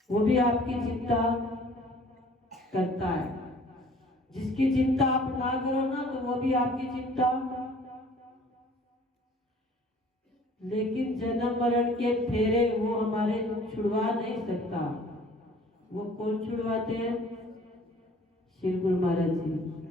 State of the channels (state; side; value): normal; both; correlation 0.52